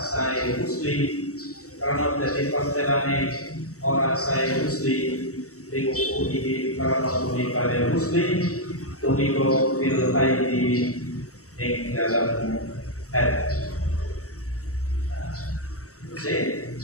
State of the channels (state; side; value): late; right; 0.65 ms